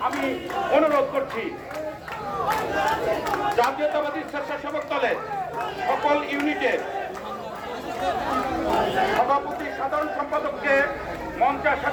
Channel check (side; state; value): both; identical; correlation 1.00